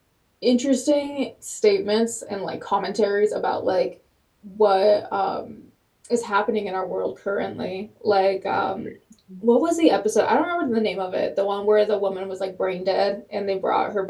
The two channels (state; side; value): identical; both; correlation 1.00